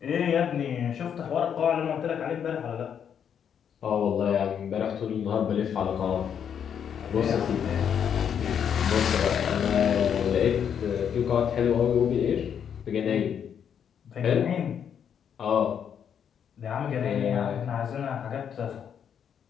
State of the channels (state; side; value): quieter; right; 8.2 dB